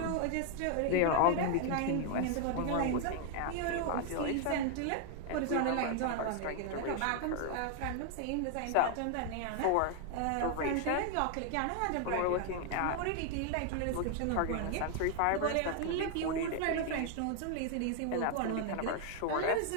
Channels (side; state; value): both; different; correlation 0.00